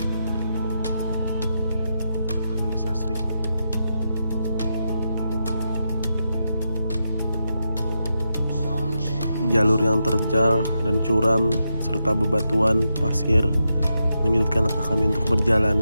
Dan masih asri. Jalur yang terjal dan curam serta bebatuan pasir menyulitkan langkah kami untuk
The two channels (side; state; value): both; inverted; correlation -0.85